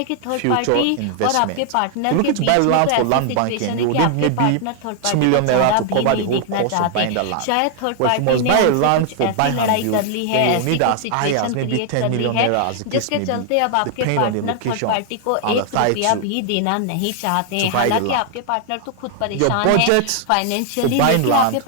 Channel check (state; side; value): different; both; correlation 0.00